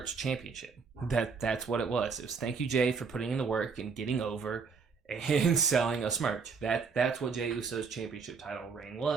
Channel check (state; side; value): quieter; left; 5.4 dB